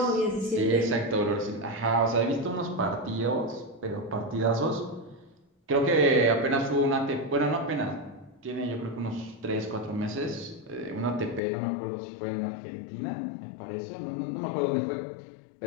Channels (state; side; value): drops out; right; at 11.4 s